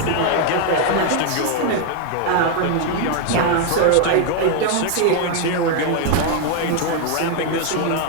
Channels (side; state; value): both; different; correlation 0.00